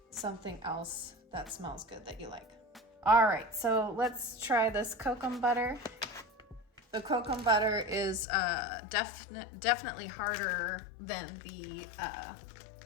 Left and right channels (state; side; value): drops out; right; at 8.2 s